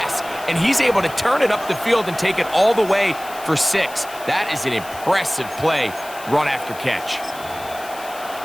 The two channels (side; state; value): left; noise; hiss, 17 dB below the sound